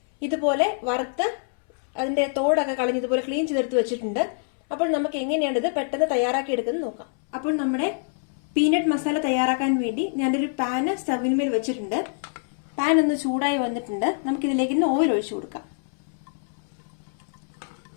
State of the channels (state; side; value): silent; right; 62 dB below the other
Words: ഇതുപോലെ വറുത്ത് അതിന്റെ തോടൊക്കെ കളഞ്ഞ് ഇതുപോലെ ക്ലീൻ ചെയ്തെടുത്ത് വെച്ചിട്ടുണ്ട്. അപ്പോൾ നമുക്ക് എങ്ങനെയാണ് ഇത് പെട്ടെന്ന് തയ്യാറാക്കി എടുക്കുന്നത് നോക്കാം. അപ്പോൾ നമ്മുടെ പീനട്ട് മസാല തയ്യാറാക്കാൻ വേണ്ടി ഞാനൊരു പാന് സ്റ്റവിന്മേൽ വെച്ചിട്ടുണ്ട്. പാൻ ഒന്ന് ചൂടായി വന്നിട്ടുണ്ട്. നമുക്ക് ഇതിലേക്ക് ഇന്ന് ഓയിൽ ഒഴിച്ചു കൊടുക്കാം.